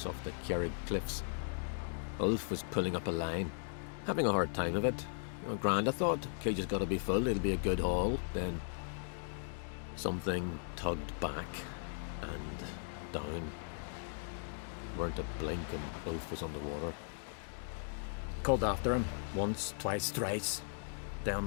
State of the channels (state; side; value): silent; right; digital silence